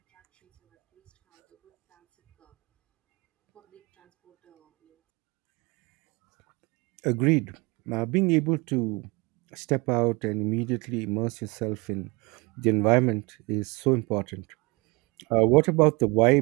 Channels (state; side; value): quieter; left; 26.6 dB